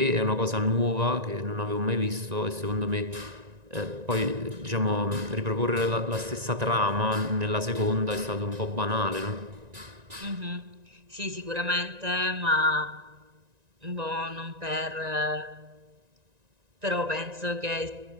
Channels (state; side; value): late; left; 1.9 ms